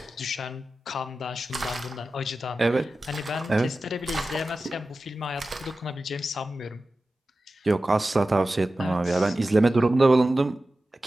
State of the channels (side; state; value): both; normal; correlation 0.94